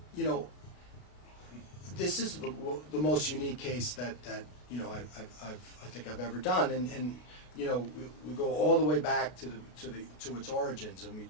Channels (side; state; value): right; late; 33 ms